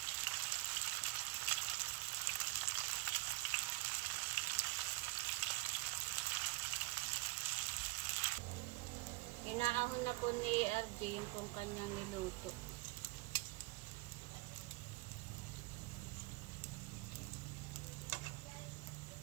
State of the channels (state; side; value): quieter; left; 22.4 dB